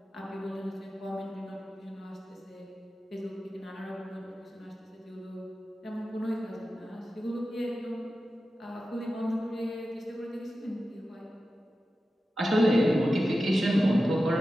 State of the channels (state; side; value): normal; both; correlation 0.93